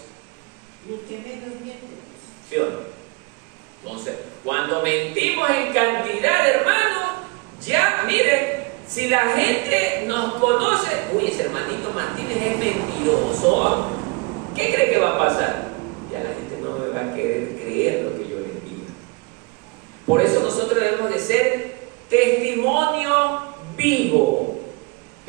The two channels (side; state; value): left; quieter; 27.5 dB